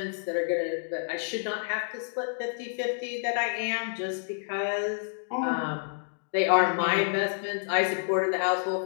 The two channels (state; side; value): silent; right; digital silence